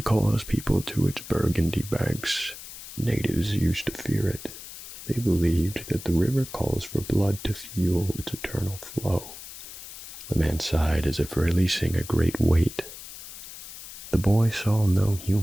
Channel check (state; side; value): noise; left; hiss, 13 dB below the sound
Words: calls people to its burgundy banks. Natives used to fear it. They believed that the river calls for blood to fuel its eternal flow." The man sighed as if releasing a great weight. The boy saw no